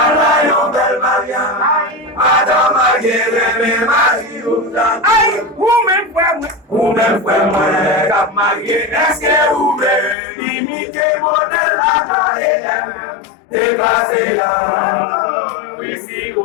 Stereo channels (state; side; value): drops out; right; at 10.2 s